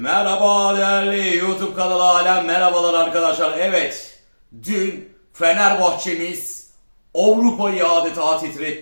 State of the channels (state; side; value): inverted; both; correlation -1.00